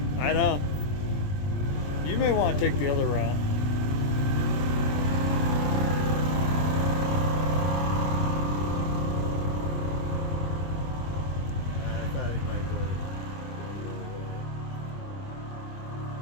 I know. You may want to take the other route. I thought you might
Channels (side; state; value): right; late; 21 ms